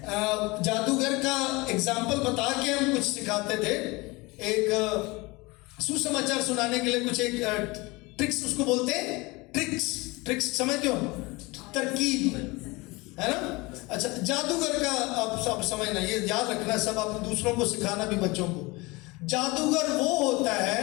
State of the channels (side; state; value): right; quieter; 23.9 dB